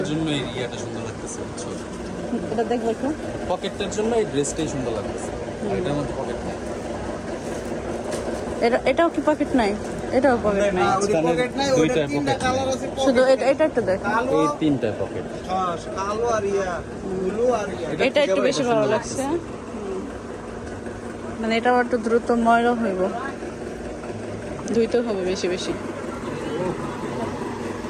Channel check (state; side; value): identical; both; correlation 1.00